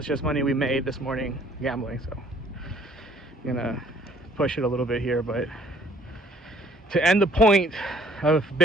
just money we made this morning gambling. So I'm gonna push it a little bit here, but to end the point of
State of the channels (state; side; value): normal; both; correlation 0.59